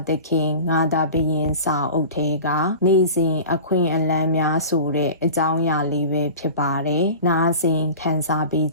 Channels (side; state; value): both; inverted; correlation -0.37